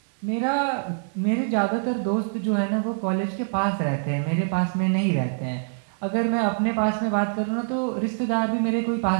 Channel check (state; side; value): silent; left; digital silence